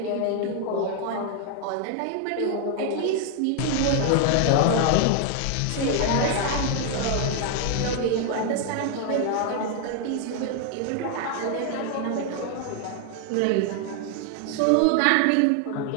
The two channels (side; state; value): both; different; correlation 0.00